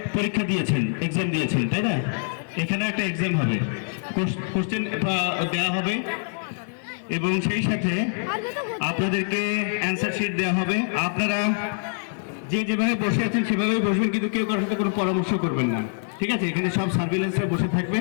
পরীক্ষা দিয়েছেন, এক্সাম দিয়েছেন, তাই না? এখানে একটা এক্সাম হবে, কোশ্চেন দেওয়া হবে এবং সেই সাথে আপনাদেরকে অ্যান্সার শিট দেওয়া হবে। আপনারা যেভাবে বসে আছেন সেভাবেই বসবেন, কিন্তু কেউ কারোর সাথে কোনো পরামর্শ করবেন না, ঠিক আছে? এখানে সব সার্ভিলেন্সে বসে থাকবে,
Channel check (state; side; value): silent; right; 62 dB below the other